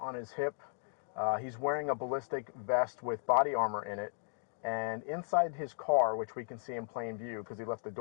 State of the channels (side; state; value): right; silent; digital silence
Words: his hip. He's wearing a ballistic vest with body armor in it. And inside his car, which we can see in plain view because he left the